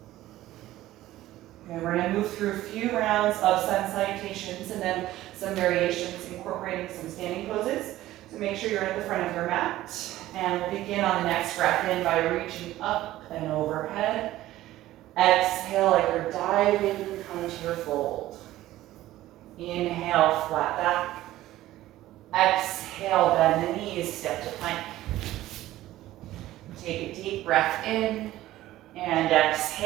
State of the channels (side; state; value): left; quieter; 15.3 dB